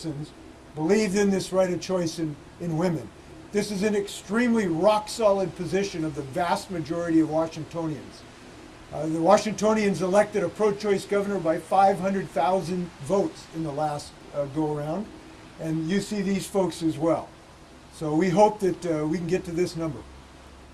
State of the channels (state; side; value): identical; both; correlation 1.00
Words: believed in this right of choice in women. This is an extremely rock-solid position of the vast majority of Washingtonians. The Washingtonians elected a pro-choice governor by 500,000 votes in the last go-around, and you see these folks as well. So we hope that we can get to this number.